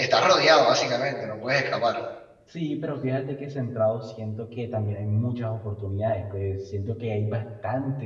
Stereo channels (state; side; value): identical; both; correlation 1.00